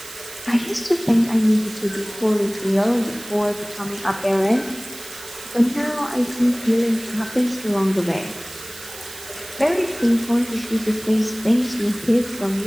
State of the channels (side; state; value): right; noise; hiss, 15 dB below the sound